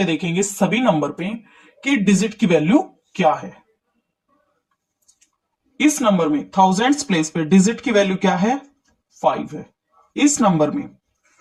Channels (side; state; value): both; identical; correlation 1.00